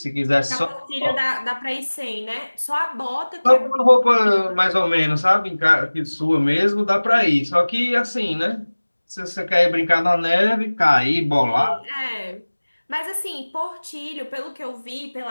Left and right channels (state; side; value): inverted; both; correlation -1.00